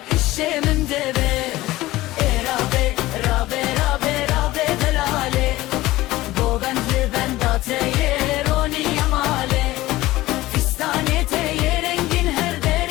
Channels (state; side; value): quieter; right; 17.6 dB